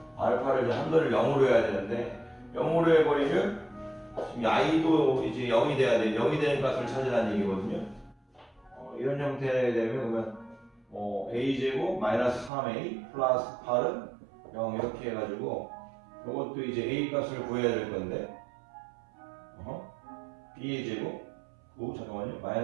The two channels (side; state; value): left; drops out; at 12.5 s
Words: 알파를 이제 한도를 0으로 해야 되는데 0으로 해버리면 지금 i도 이제 0이 돼야 돼. 0이 되는 값을 찾으라는 얘기거든요. 이런 형태에 되면 그러면 a제곱 마이너스 3a 플러스 8은 0 이렇게 해가지고 이것도 이제 a 값을 구해야 될 건데 b의 제곱 9 잠깐만요.